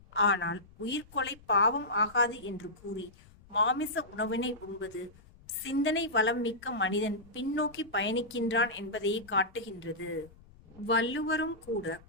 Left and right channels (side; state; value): left; noise; rumble, 24 dB below the sound